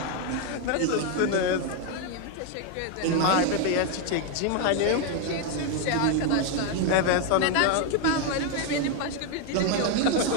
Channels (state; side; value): different; both; correlation 0.01